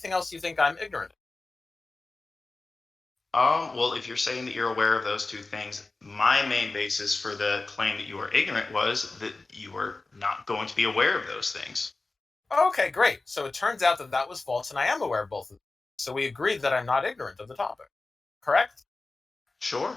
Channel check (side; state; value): right; quieter; 3.4 dB